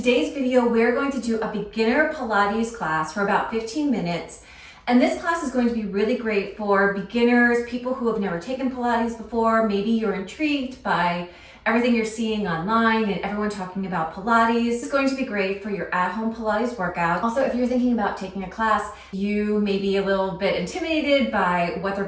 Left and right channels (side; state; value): both; identical; correlation 1.00